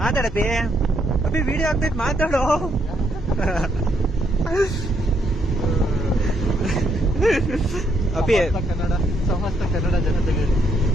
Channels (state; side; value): normal; both; correlation 0.74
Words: ಮಾತಾಡಪ್ಪಿ, ಅಪ್ಪಿ ವಿಡಿಯೋ ಆಗ್ತೈತ್ ಮಾತಾಡೋ. ಅಪ್ಪಿ ಸಮಸ್ತ ಕನ್ನಡ ಜನತೆಗೆ